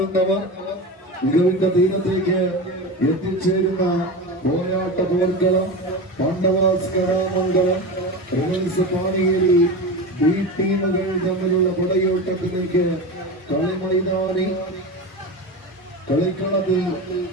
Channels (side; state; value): both; normal; correlation 0.25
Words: മികവിന്റെ തീരത്തേക്ക് എത്തിച്ചേരുന്ന പോരാട്ട പോർക്കളം പാണ്ഡവാസ് കലാമംഗലം റിവൽസ് പാണിയേരി ബി ടീമുകൾ തമ്മിലുള്ള പടയോട്ടത്തിലേക്ക് കളിമൈതാനി കളിക്കളത്തിൽ